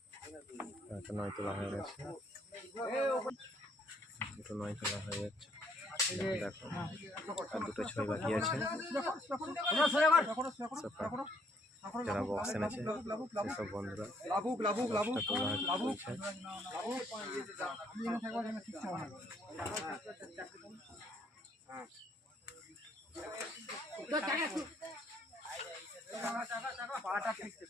নয় তোলা হয়ে গেছে, দুটো নয় তোলা হয়ে যাচ্ছে। দেখো আর দুটো ছয় বাকি আছে। যারা বক্স এনেছে সেসব বন্ধুরা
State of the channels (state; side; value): normal; both; correlation 0.68